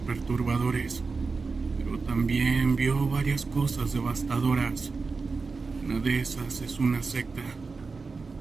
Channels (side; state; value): left; quieter; 4.4 dB